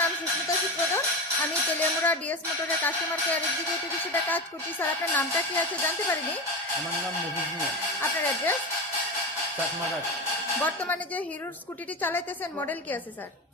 নাম সুস্মিতা সুপ্রধান। আমি তেলিয়ামুড়া ডিএস মোটরের কাস্টমার কেয়ার এক্সিকিউটিভ হিসেবে কাজ করছি। স্যার আপনার নামটা কি আছে জানতে পারিনি? আমার নাম মফিজ মিয়া, আপনার অ্যাড্রেস? চাকমাঘাট। বর্তমানে যে হিরোর স্কুটিটি চালাইতেছেন মডেল কি আছে স্যার?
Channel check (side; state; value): both; normal; correlation 0.21